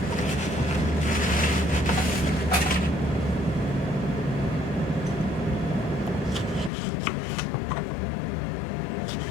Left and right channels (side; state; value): right; drops out; at 6.7 s